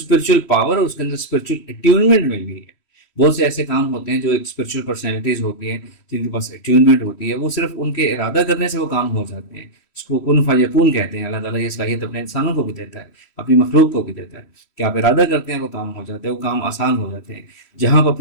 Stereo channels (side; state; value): right; late; 3.1 ms